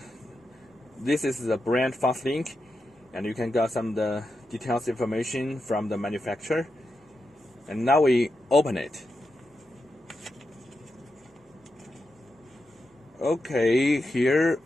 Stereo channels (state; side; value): normal; both; correlation 0.87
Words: this is the brand FastLink, and you can get some of the details information from the manufacturer. And now we open it. Okay, here